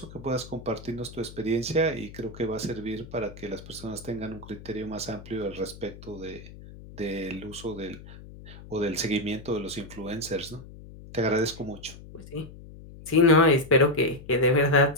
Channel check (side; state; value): left; noise; hum, 16 dB below the sound